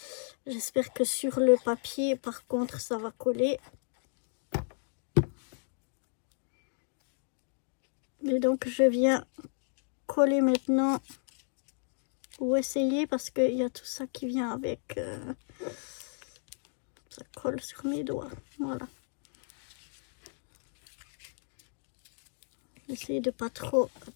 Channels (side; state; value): right; silent; digital silence